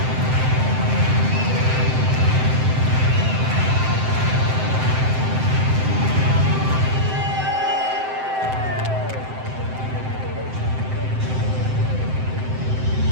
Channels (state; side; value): late; left; 7.7 ms